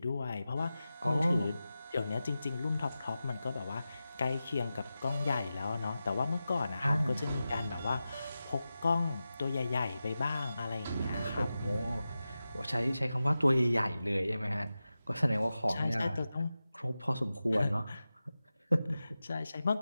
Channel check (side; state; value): both; inverted; correlation -0.93